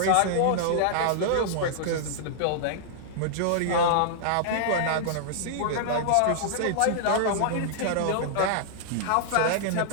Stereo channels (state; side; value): different; both; correlation -0.01